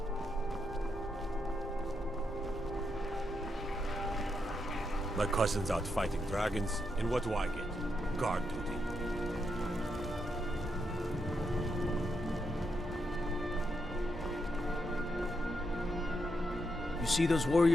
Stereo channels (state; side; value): normal; both; correlation 0.82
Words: My cousin's out fighting dragons, and what do I get? Guard duty. You see those